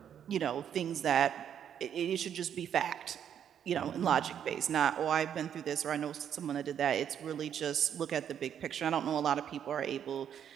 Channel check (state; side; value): quieter; left; 9.0 dB